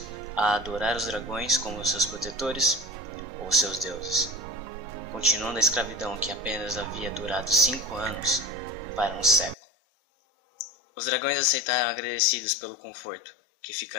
a adorar os dragões como seus protetores ou seus deuses, continuando a escravidão que apenas havia durado 5 anos para um século. Os dragões aceitaram agradecidos pelo conforto que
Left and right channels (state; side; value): drops out; right; at 9.6 s